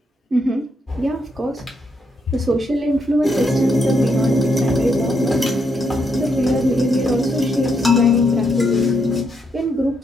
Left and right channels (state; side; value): normal; both; correlation 0.78